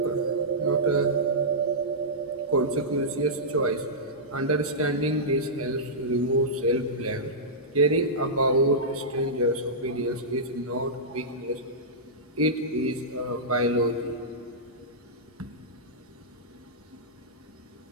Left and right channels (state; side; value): normal; both; correlation -0.14